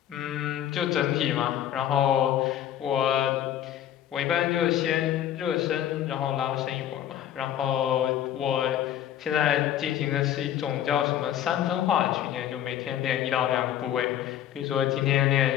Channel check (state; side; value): quieter; right; 11.0 dB